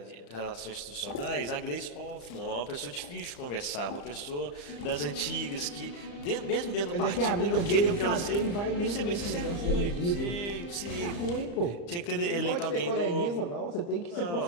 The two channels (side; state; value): right; late; 35 ms